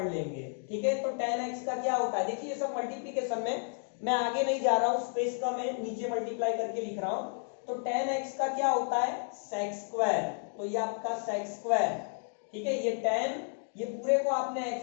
लेंगे, ठीक है। तो tan x का क्या होता है, देखिए ये सब मल्टीप्लीकेशन में मैं आगे नहीं जा रहा हूं, स्पेस का मैं नीचे मल्टीप्लाई करके लिख रहा हूं। तो tan x का क्या होता है, sec स्क्वायर, तो ये आपका sec स्क्वायर, ठीक है। ये tan, ये पूरे को आपने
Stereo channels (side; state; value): right; silent; 56 dB below the other